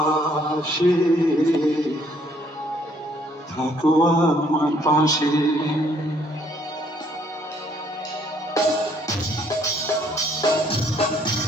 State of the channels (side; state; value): both; normal; correlation 0.66